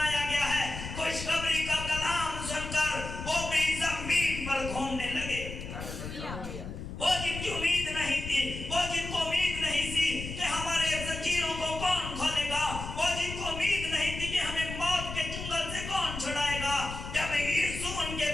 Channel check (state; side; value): noise; left; rumble, 8 dB below the sound